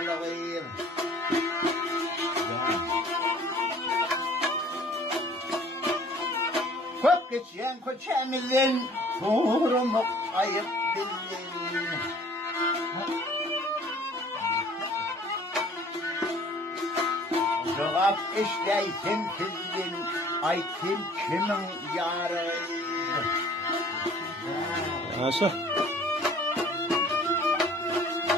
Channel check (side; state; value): both; normal; correlation 0.53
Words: Köp geçen köçemizin sorumluluk ayıp bilin. Cevap işleysin sizin, aytın kimin yarı? Nasıl?